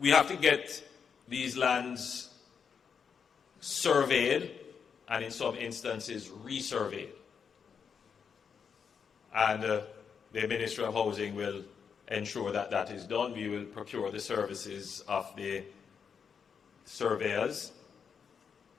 have to get these lands surveyed and in some instances resurveyed. And the Ministry of Housing will ensure that that is done. We will procure the services of the surveyors.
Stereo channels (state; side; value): quieter; right; 6.6 dB